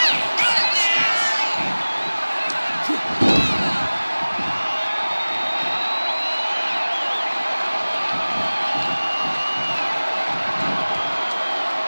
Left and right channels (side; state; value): both; inverted; correlation -1.00